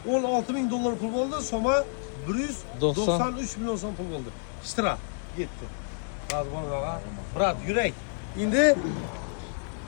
16 ming dollar pul bo'ldi. Soma 193 million so'm pul bo'ldi. Ishtirak ketdi. Hozir bo'lmaga. Brat, yurak. Endi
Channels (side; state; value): right; silent; digital silence